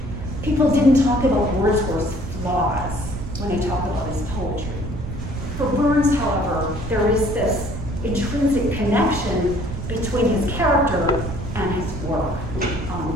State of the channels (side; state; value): right; noise; rumble, 7 dB below the sound